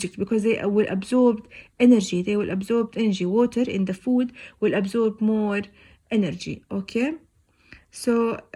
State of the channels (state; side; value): identical; both; correlation 1.00